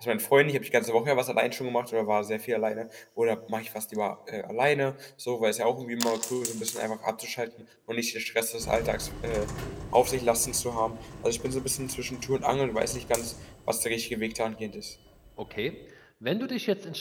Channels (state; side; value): identical; both; correlation 1.00